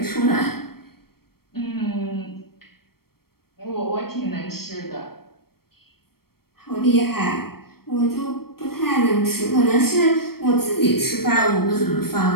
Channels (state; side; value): late; right; 0.94 ms